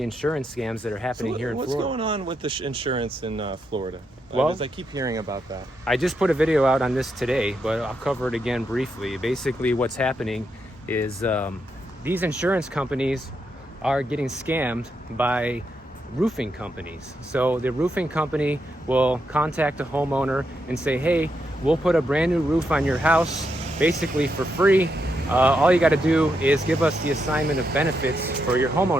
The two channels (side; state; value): both; normal; correlation 0.82